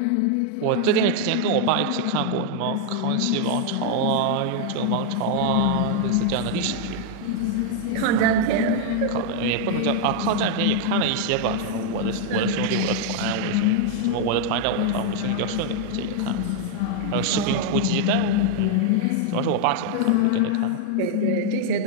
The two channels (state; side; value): different; both; correlation 0.00